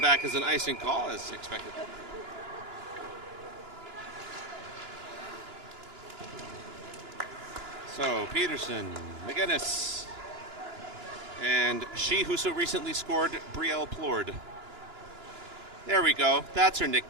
as an icing call, as expected. So, Peterson, McGinnis, and she who so recently scored, Brielle Plord. There we go. That's her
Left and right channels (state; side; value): late; left; 2.9 ms